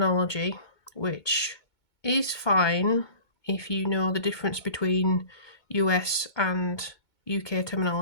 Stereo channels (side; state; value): right; late; 2.2 ms